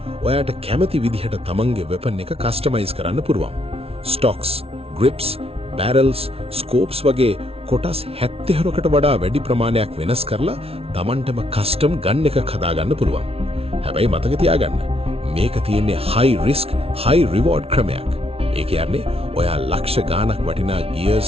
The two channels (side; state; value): left; late; 0.28 ms